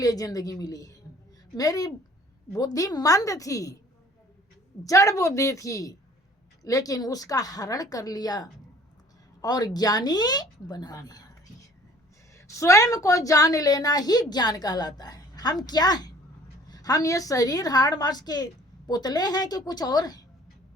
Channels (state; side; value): normal; both; correlation 0.53